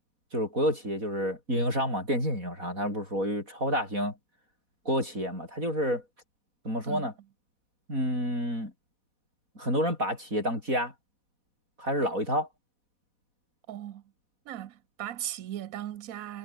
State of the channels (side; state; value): left; late; 4.1 ms